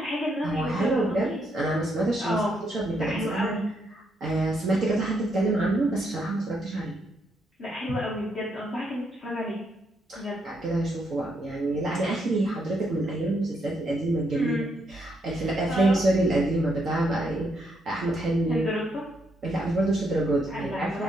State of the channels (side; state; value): both; normal; correlation 0.76